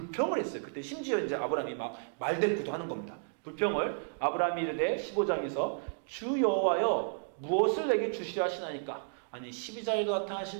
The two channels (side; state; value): left; silent; digital silence